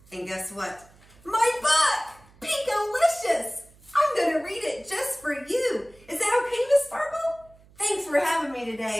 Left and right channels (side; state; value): right; noise; hum, 27 dB below the sound